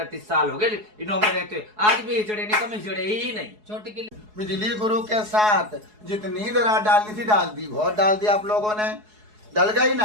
साल हो गए इन्हों में रहते, आज भी हिजड़े नहीं, कम हिजड़े ही नहीं। छोटी की बिजली गुरु के साथ जितनी दरार डालनी थी डाल दी, बहुत डाल दी आप लोगों ने, डल गई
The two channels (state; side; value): late; left; 4.7 ms